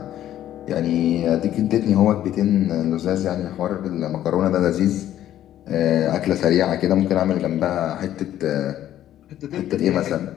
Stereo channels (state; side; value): quieter; right; 12.1 dB